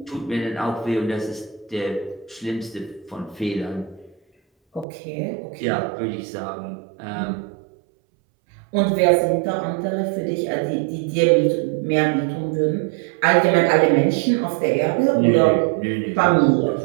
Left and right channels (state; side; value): drops out; left; at 4.9 s